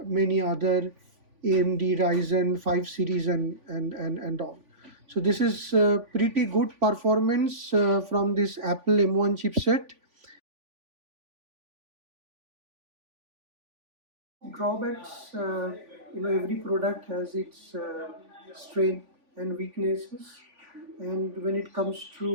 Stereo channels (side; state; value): left; late; 3.5 ms